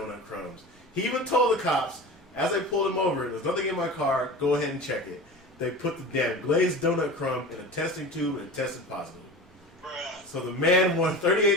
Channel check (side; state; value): both; normal; correlation 0.33